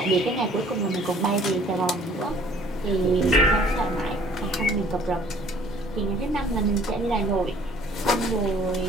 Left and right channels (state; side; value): normal; both; correlation 0.55